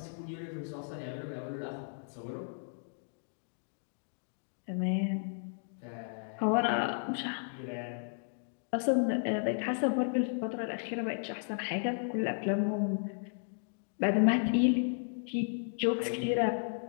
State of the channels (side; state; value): right; silent; digital silence